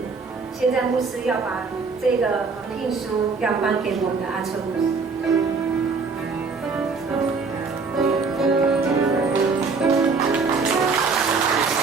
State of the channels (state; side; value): quieter; left; 4.6 dB